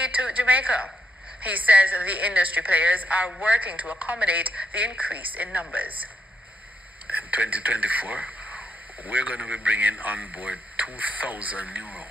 to Jamaica. He says the industry players are working to accommodate the increase in numbers. In 2024, we're going to be bringing on board 2,000 new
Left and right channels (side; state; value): both; normal; correlation 0.77